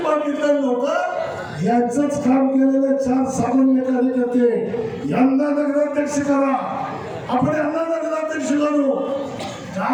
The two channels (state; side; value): identical; both; correlation 1.00